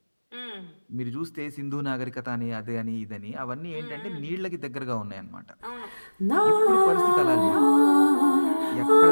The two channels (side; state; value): both; inverted; correlation -1.00